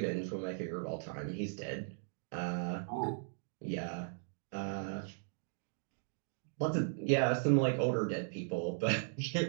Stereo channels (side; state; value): left; silent; digital silence